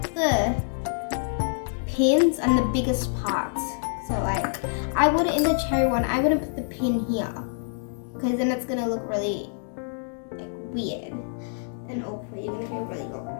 the pins on the biggest parts. So like I wouldn't, in the cherry one, I wouldn't put the pin here because then it's gonna look really like weird and awkward. You're gonna feel really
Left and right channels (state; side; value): silent; right; digital silence